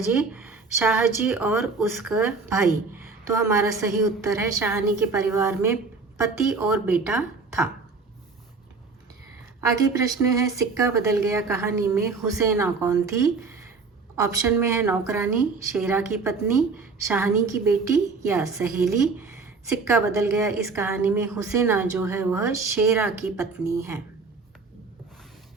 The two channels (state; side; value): quieter; left; 4.3 dB